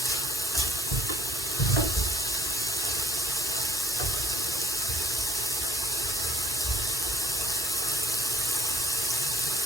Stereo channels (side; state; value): both; normal; correlation 0.60